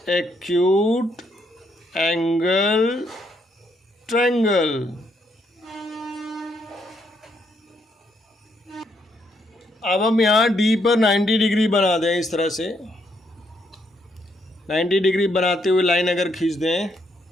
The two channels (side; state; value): both; normal; correlation 0.74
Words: acute angle triangle. अब हम यहाँ D पर 90 डिग्री बना दें। इस तरह से 90 डिग्री बनाते हुए लाइन अगर खींच दें